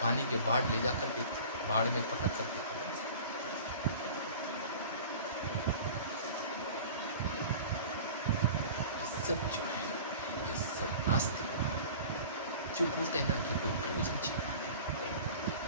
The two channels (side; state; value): both; inverted; correlation -0.40